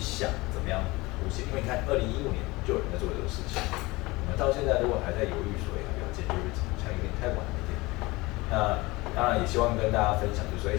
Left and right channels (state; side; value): quieter; right; 22.1 dB